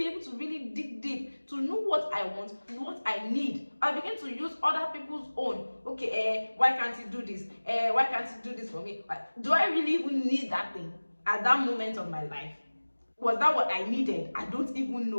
able to really dig deep to know what I want, what I need. I'll begin to use other people's own. Okay, why can't you do this? Why can't you do this for me? Do I really even need that thing at that moment of my life? Was that what I needed? I don't even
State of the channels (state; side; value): inverted; both; correlation -1.00